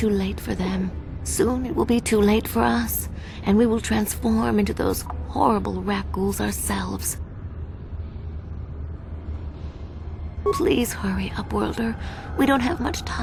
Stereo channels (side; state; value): both; identical; correlation 1.00